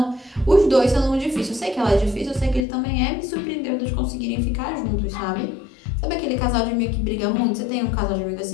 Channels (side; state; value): right; drops out; at 2.7 s